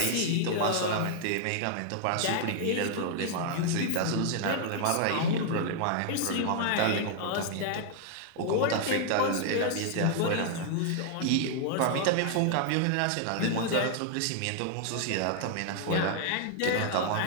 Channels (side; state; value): both; different; correlation 0.00